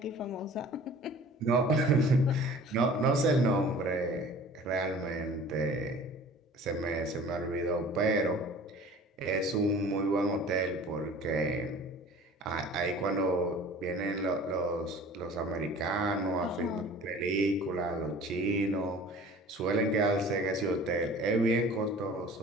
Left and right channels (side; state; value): both; normal; correlation 0.45